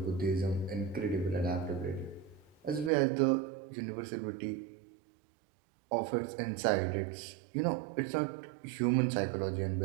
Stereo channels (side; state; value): left; drops out; at 2.9 s